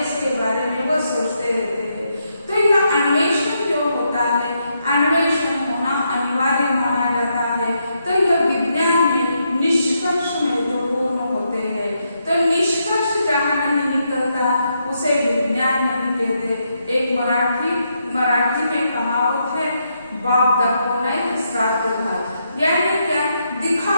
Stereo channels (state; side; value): inverted; both; correlation -0.80